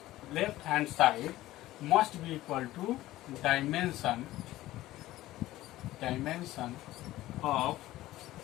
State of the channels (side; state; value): right; quieter; 15.9 dB